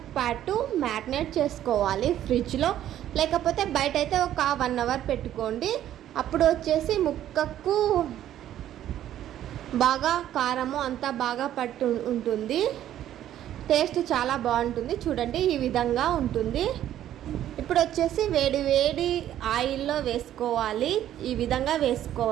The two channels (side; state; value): left; quieter; 11.8 dB